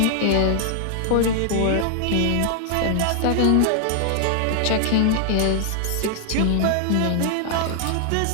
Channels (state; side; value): different; both; correlation 0.00